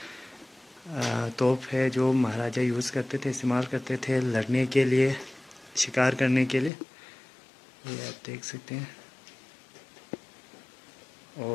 तोप है जो महाराजा यूज़ करते थे, इस्तेमाल करते थे लड़ने के लिए, शिकार करने के लिए। ये आप देख सकते हैं।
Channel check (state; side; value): drops out; right; at 6.7 s